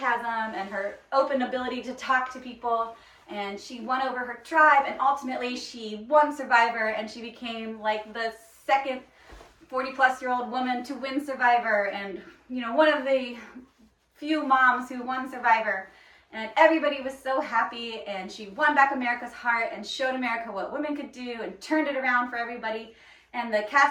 and her open ability to talk to people. And she won over her tribe, and ultimately she won Survivor, and she became like the second 40-plus-year-old woman to win Survivor, and one of the few moms who won Survivor. And everybody was so happy, and she won back America's heart and showed America what women could do and turned it around for everybody. And the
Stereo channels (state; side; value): identical; both; correlation 1.00